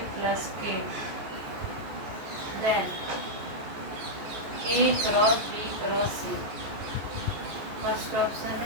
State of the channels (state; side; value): late; left; 14 ms